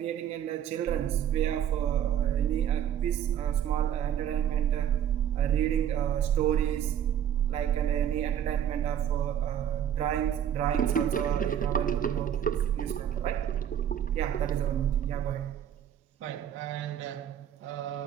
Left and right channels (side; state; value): left; quieter; 9.9 dB